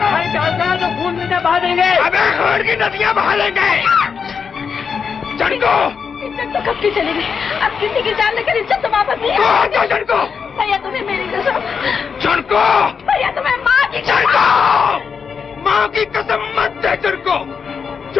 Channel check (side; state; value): right; quieter; 6.2 dB